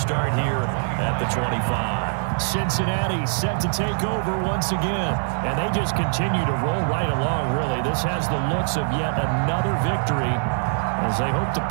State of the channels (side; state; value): left; silent; digital silence